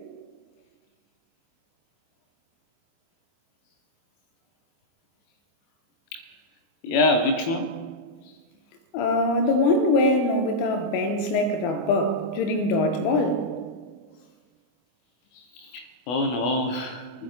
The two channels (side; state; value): right; late; 24 ms